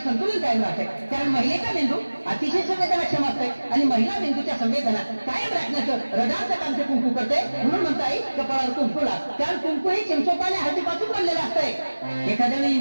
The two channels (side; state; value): both; inverted; correlation -1.00